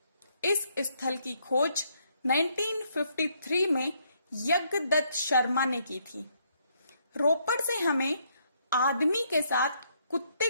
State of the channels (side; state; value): both; inverted; correlation -0.72